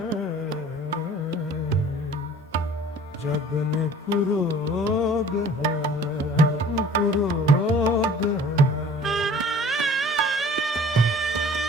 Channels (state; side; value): normal; both; correlation 0.50